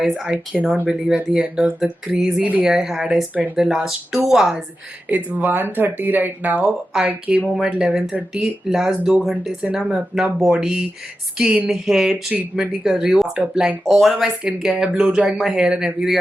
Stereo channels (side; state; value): both; normal; correlation 0.91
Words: I cannot believe at the end of the crazy day I had, I spent the last 2 hours. It's 1:30 right now. I came home at 11:30. Last 2 घंटे से ना मैं अपना body, skin, hair treatment ही कर रही हूँ. After applying all of my skincare, blow drying my hair and everything,